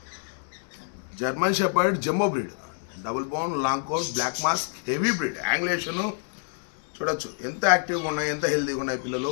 German shepherd jumbo breed double bone long coat black mask heavy breed angulation చూడొచ్చు ఎంత యాక్టివ్గా ఉన్నాయి ఎంత హెల్తీగా ఉన్నాయి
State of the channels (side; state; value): right; silent; digital silence